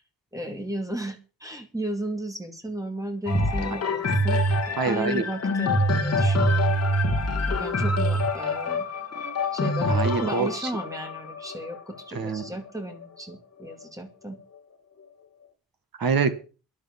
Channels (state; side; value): normal; both; correlation 0.44